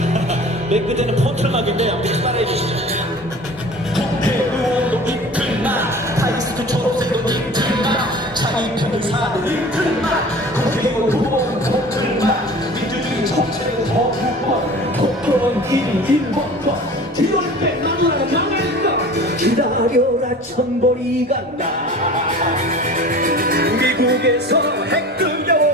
맨 끝에는 폰틀막인데 아무튼 따라해 주시죠 국회의원도 이틀막 타이스트 초록색도 이틀막 자기 변호사도 이틀막 국회의원 두번 폰틀막 민주주의 정책의 거부권 폭언 1번권 뒤를 빼나무라 명예인가 기다려라 천벌이 간다 미국에서 핵들려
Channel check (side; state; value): both; normal; correlation 0.41